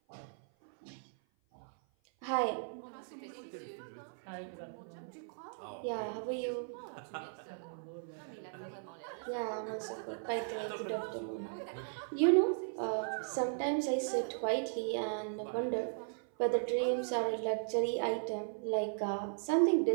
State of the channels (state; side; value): silent; left; 53 dB below the other